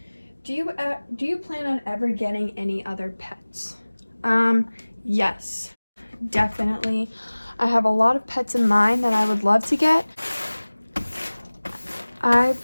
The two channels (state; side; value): inverted; both; correlation -1.00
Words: Do you plan on ever getting any other pets? Yes, definitely. I have a lot of pets in mind that I would love to get. I